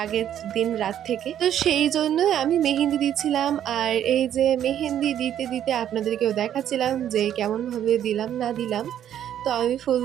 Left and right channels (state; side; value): quieter; left; 10.5 dB